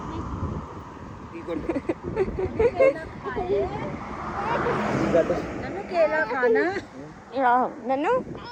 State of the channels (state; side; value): identical; both; correlation 1.00